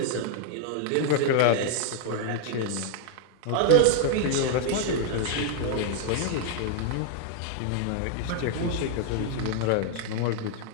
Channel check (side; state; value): both; different; correlation 0.00